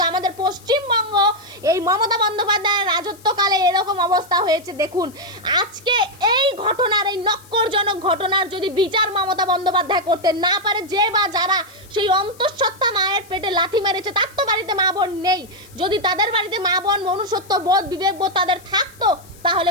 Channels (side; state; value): left; noise; hiss, 24 dB below the sound